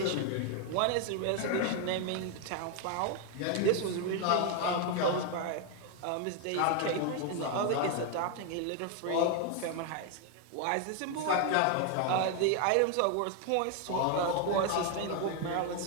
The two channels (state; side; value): different; both; correlation 0.01